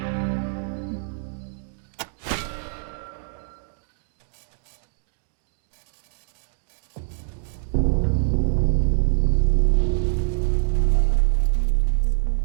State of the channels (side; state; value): left; silent; digital silence